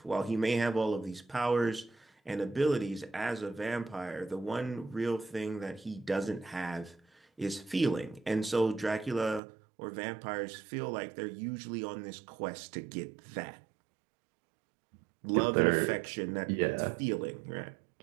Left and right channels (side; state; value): left; drops out; at 9.4 s